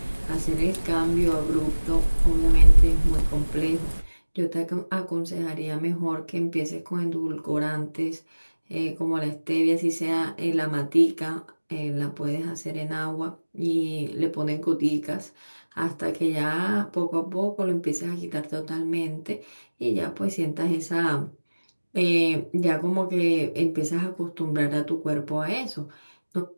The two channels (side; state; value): both; inverted; correlation -1.00